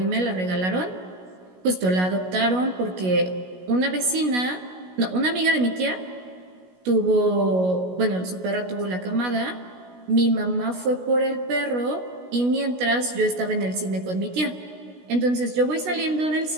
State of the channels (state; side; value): late; left; 16 ms